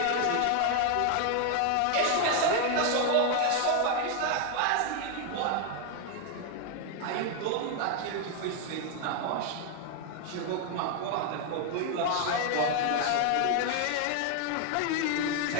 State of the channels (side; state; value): both; different; correlation 0.01